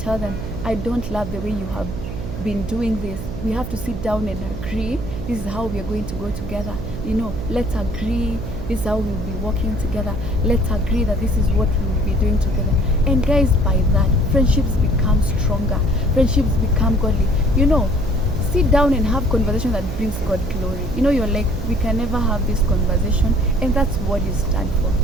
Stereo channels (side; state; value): right; noise; hum, 7 dB below the sound